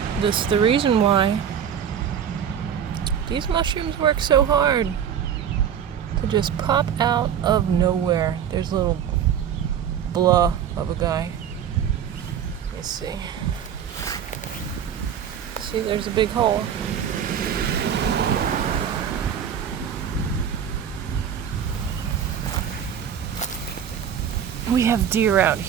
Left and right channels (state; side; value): quieter; left; 8.6 dB